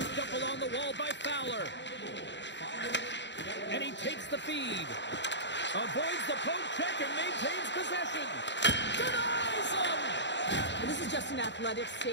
up along the wall by Fowler. And he takes the feed. Avoids the poke check and maintains possession. Denies him! This is just an athletic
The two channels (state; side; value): late; right; 0.52 ms